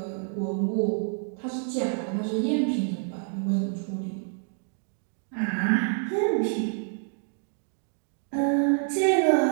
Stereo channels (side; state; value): left; silent; 58 dB below the other